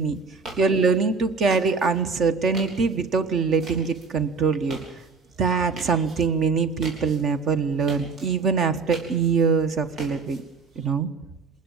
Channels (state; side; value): quieter; left; 4.8 dB